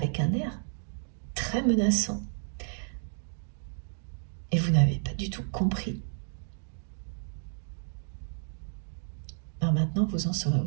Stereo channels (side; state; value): left; silent; digital silence